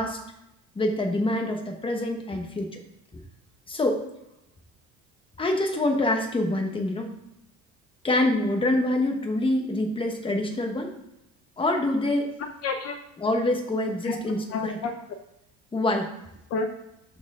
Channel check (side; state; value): both; normal; correlation 0.60